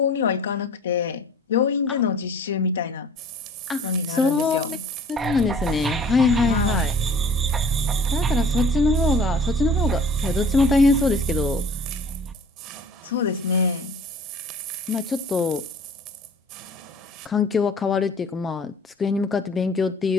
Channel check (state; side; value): normal; both; correlation 0.48